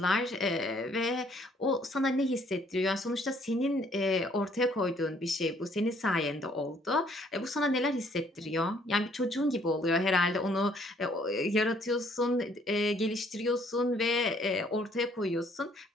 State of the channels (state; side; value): normal; both; correlation 0.63